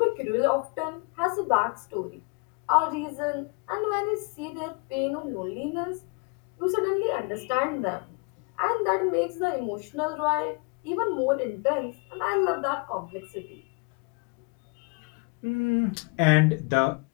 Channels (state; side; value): quieter; right; 33.2 dB